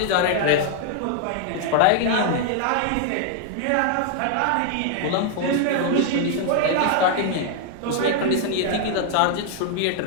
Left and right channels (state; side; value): different; both; correlation 0.00